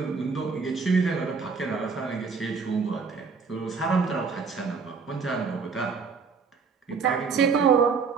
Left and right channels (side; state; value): left; quieter; 5.3 dB